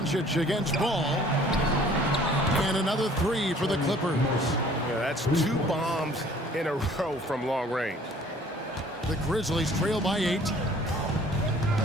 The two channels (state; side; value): normal; both; correlation 0.54